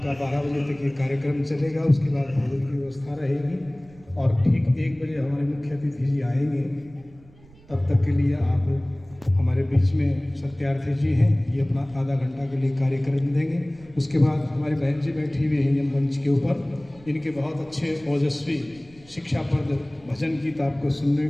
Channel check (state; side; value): noise; right; rumble, 25 dB below the sound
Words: 12 बजे तक ये कार्यक्रम चलेगा, उसके बाद भोजन की व्यवस्था रहेगी और ठीक 1 बजे हमारे मुख्य अतिथि जी आएंगे। तब तक के लिए आप हमारे बीच में सत्यार्थी जी हैं, ये अपना आधा घंटा के लिए कार्यक्रम देंगे। उसके बाद हमारे बहन जी बैठी हुई हैं मंच के ऊपर, इनके बहुत अच्छे ओजस्वी शिक्षाप्रद भजन गीत आपको सुनने